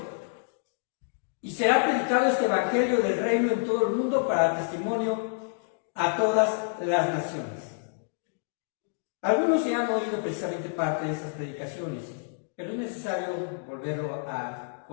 Y será predicado este evangelio del reino en todo el mundo para testimonio a todas las naciones. Algunos ya han oído precisamente parte de estas predicaciones, pero es necesario volverlo a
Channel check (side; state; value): right; silent; digital silence